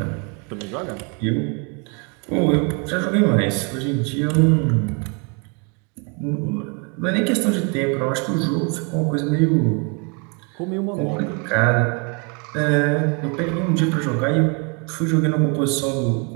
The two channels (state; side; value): quieter; left; 34.7 dB